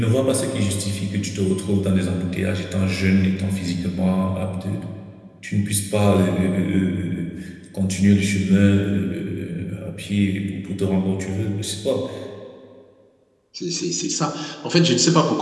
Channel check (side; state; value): both; identical; correlation 1.00